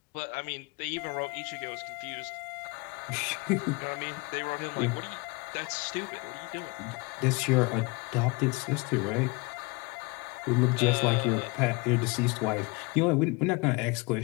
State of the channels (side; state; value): right; quieter; 26.8 dB